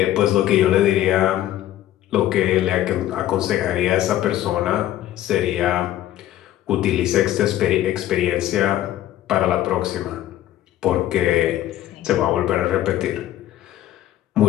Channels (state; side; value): quieter; right; 13.3 dB